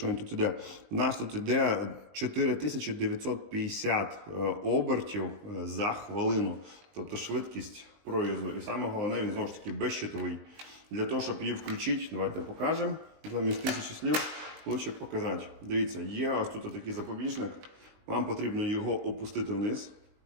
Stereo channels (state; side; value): late; left; 20 ms